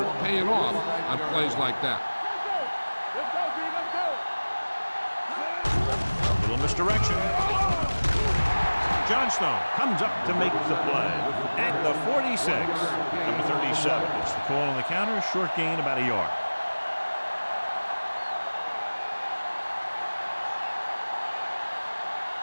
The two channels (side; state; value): both; inverted; correlation -1.00